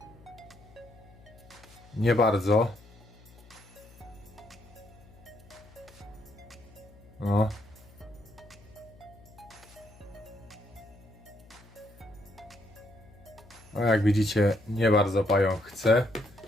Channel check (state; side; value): noise; left; hum, 23 dB below the sound